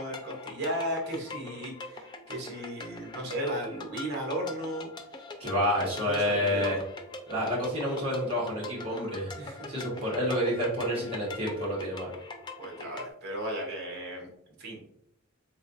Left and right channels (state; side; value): normal; both; correlation 0.09